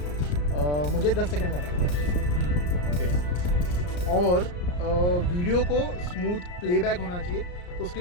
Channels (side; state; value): right; late; 34 ms